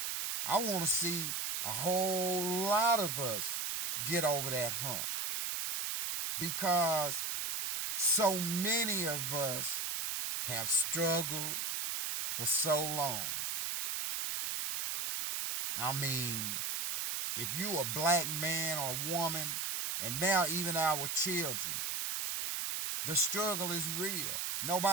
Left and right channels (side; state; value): right; noise; hiss, 1 dB below the sound